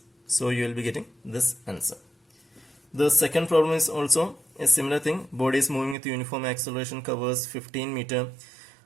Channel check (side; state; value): left; drops out; at 6.0 s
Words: So you will be getting this answer. The second problem is also a similar thing. Body is moving with uniform acceleration, covers 15 meter.